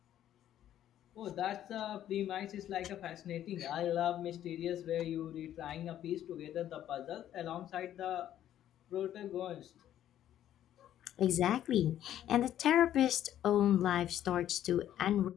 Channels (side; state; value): right; quieter; 11.5 dB